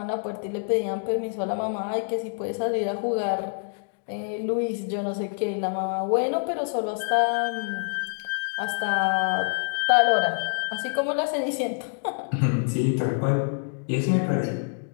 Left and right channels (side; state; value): right; silent; digital silence